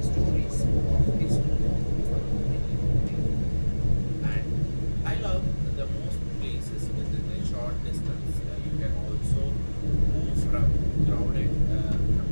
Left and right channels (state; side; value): inverted; both; correlation -1.00